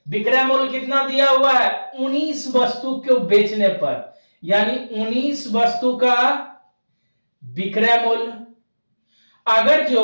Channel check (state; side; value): inverted; both; correlation -1.00